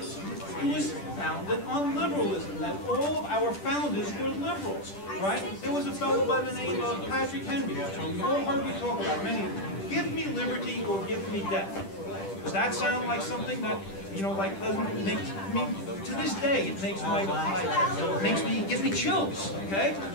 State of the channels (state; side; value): late; right; 10 ms